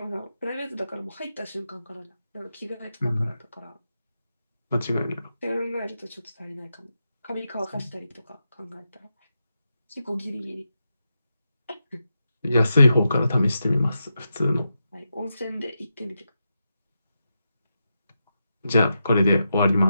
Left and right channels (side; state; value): both; inverted; correlation -0.87